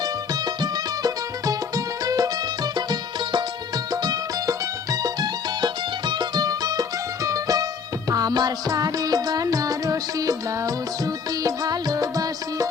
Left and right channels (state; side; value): quieter; right; 5.9 dB